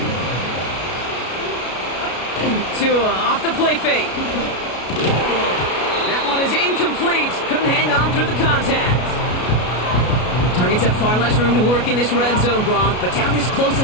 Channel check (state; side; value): late; right; 33 ms